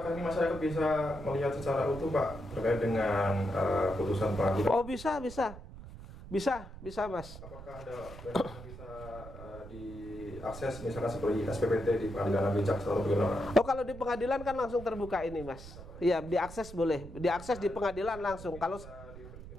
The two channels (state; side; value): noise; right; rumble, 14 dB below the sound